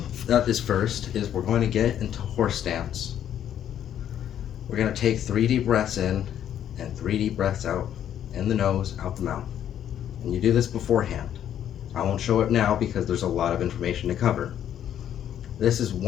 that is first is we're going to get into horse stance. We're going to take 3 deep breaths in and 3 deep breaths out, in the nose, out the mouth. And you do this beforehand. I won't show it now because there's a lot of information to cover. This is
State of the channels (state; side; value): quieter; right; 10.2 dB